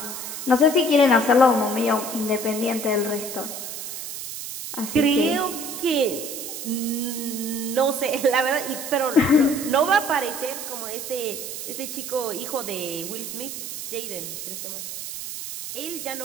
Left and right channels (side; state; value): right; noise; hiss, 7 dB below the sound